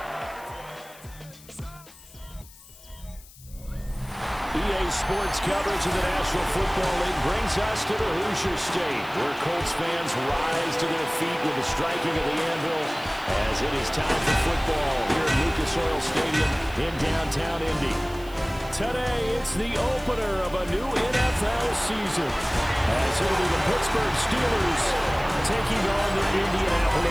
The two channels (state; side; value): noise; left; hiss, 22 dB below the sound